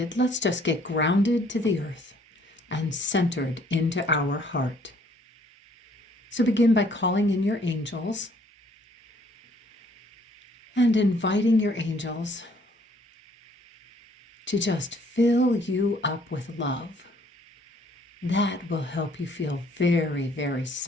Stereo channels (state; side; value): normal; both; correlation 0.62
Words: let's just get grounded to the earth and centered into our heart. So begin by calling in your angels and inviting your angels to just fill you up with love. That will help you feel very, very